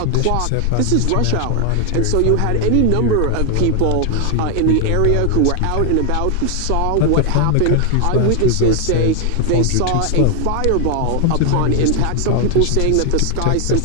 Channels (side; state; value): both; different; correlation 0.00